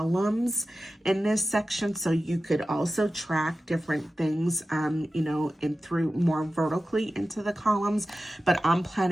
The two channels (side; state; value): both; normal; correlation 0.94